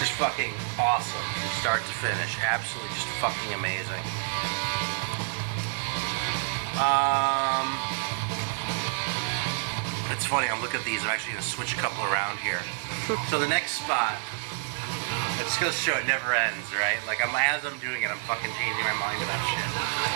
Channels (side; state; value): left; silent; 59 dB below the other